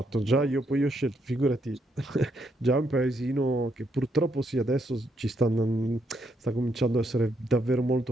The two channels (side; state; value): both; normal; correlation 0.76